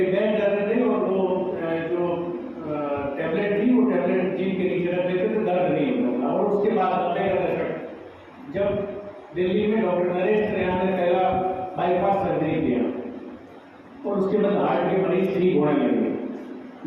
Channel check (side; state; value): both; identical; correlation 1.00